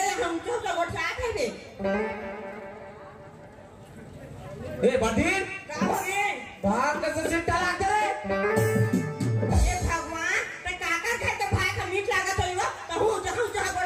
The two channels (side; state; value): both; identical; correlation 1.00